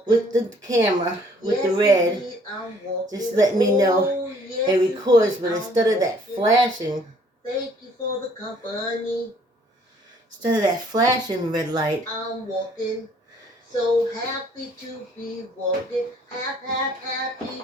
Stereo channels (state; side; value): normal; both; correlation 0.60